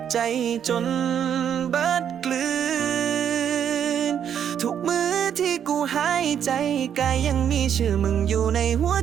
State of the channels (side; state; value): left; quieter; 8.9 dB